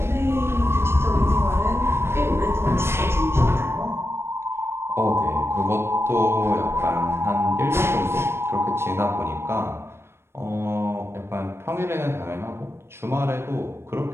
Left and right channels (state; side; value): late; left; 0.12 ms